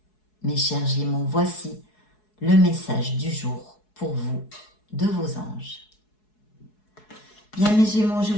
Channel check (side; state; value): right; late; 4.7 ms